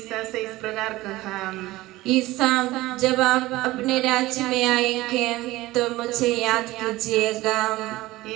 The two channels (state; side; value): quieter; left; 18.2 dB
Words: से इस प्रकार कहा, ईसा, जब आप अपने राज्य में आएंगे तो मुझे याद कीजिएगा।